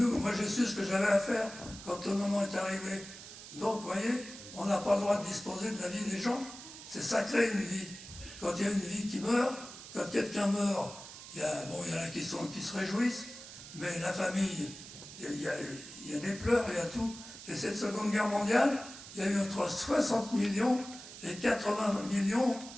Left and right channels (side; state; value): right; noise; hiss, 14 dB below the sound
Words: j'ai su ce que j'avais à faire quand le moment est arrivé. Donc, vous voyez, on n'a pas le droit de disposer de la vie des gens. C'est sacré une vie. Quand il y a une vie qui meurt, quand quelqu'un meurt, il y en a qui se réjouissent, mais la famille, il y a des pleurs, il y a tout. Et cette Seconde Guerre mondiale, il y a eu entre 60 millions et 80 millions